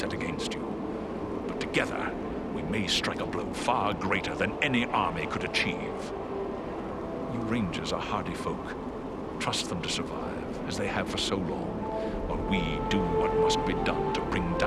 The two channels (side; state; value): both; identical; correlation 1.00